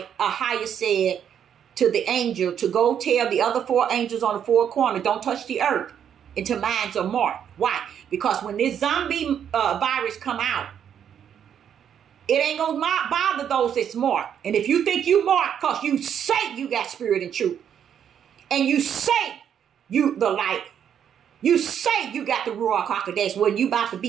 Ahia said to the angel to go tell the other 4 angels on the 4 corners, don't touch the earth until mines are marked. Why? Because when this zombie virus come out, it ain't gonna bother those that's marked. And if you think you marked because you say you got spirit and truth, and you say you the light, you say you got the Ruach HaKodesh, when you about to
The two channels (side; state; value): left; quieter; 8.8 dB